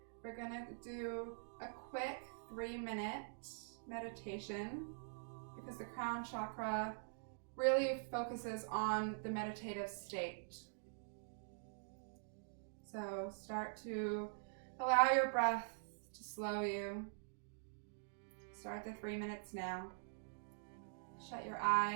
We're gonna do a quick 3-minute meditation because the crown chakra really focuses on the meditative state. So start to allow your breath to slow you. Start the 3 minutes now. Shut your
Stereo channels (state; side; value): silent; left; digital silence